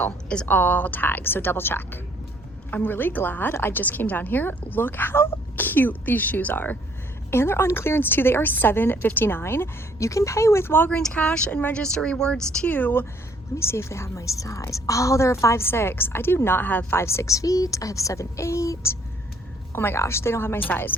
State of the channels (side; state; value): both; normal; correlation 0.63